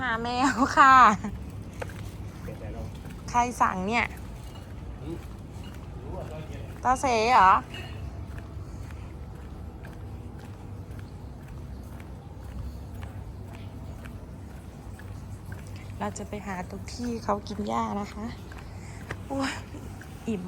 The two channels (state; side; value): identical; both; correlation 1.00